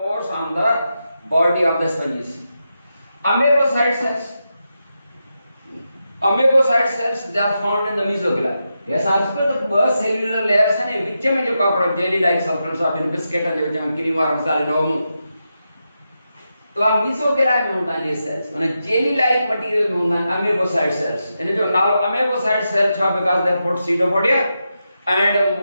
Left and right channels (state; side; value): inverted; both; correlation -0.87